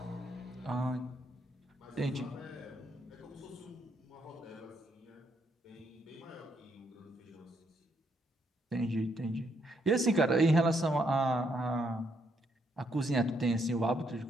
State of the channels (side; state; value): both; normal; correlation 0.75